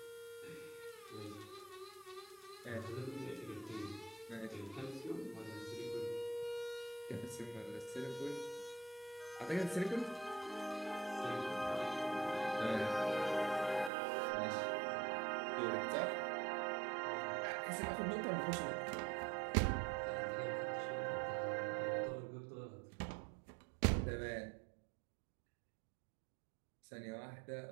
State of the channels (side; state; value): left; drops out; at 13.9 s